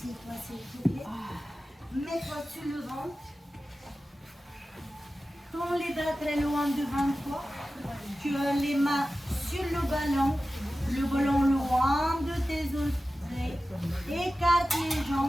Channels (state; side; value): normal; both; correlation 0.94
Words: s'il te plaît. Mets-toi sur le ventre. Tends les bras très loin devant toi. Tu as les mains sur le ballon loin de tes oreilles. Écarte les